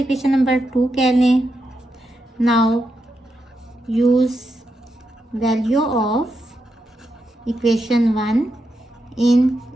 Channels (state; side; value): normal; both; correlation 0.85